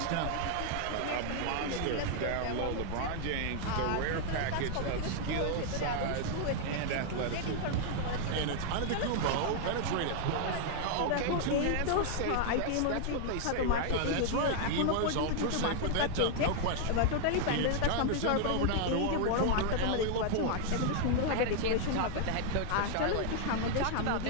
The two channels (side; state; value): both; different; correlation 0.00